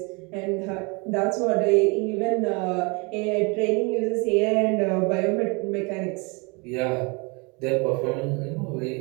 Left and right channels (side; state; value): left; quieter; 30.1 dB